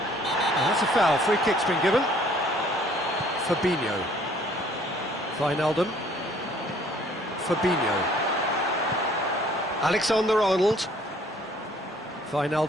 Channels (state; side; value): normal; both; correlation 0.58